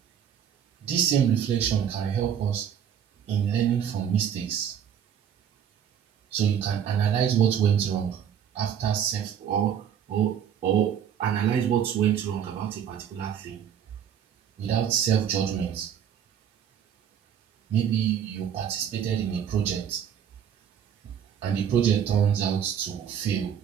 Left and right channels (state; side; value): quieter; left; 8.7 dB